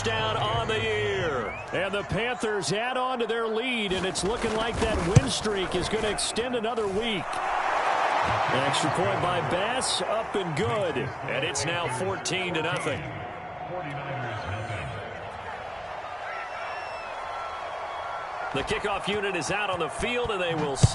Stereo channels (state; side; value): identical; both; correlation 1.00